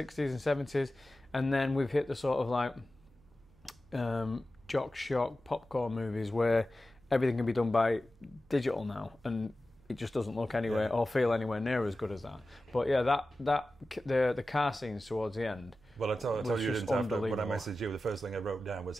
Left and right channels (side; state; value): right; noise; hum, 29 dB below the sound